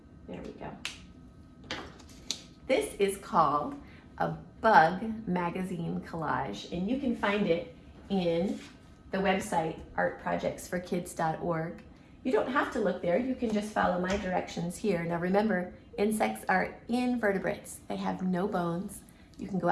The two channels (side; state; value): both; identical; correlation 1.00